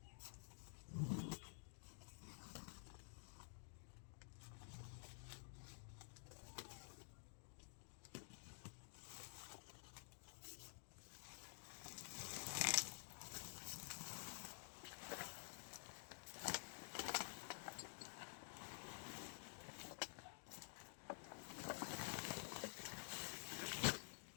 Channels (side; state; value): right; silent; digital silence